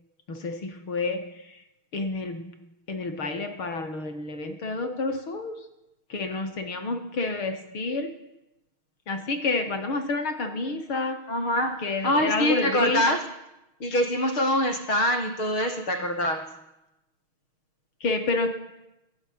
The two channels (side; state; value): right; late; 6.4 ms